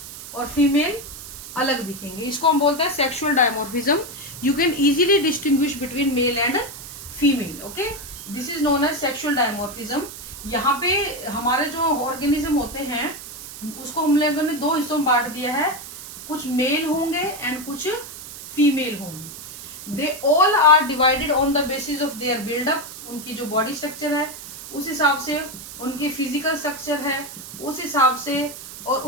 और फीमेल अलग दिखेंगे. इसको हम बोलते हैं sexual dimorphism. You can easily distinguish between male and female. Okay, this is known as sexual dimorphism. यहाँ पे हमारे जो ऑर्गेनिज्म होते हैं उसको हम लोगों ने दो हिस्सों में बांट दिया है. कुछ मेल होंगे एंड कुछ फीमेल होंगे. They all are divided on the basis of their buildup. उनकी जो बॉडी स्ट्रक्चर है उस हिसाब से, उनकी फिजिकल स्ट्रक्चर है उस हिसाब से, और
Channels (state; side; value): noise; right; hiss, 13 dB below the sound